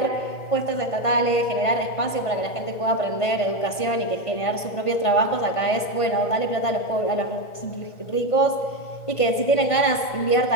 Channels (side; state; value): right; late; 1.5 ms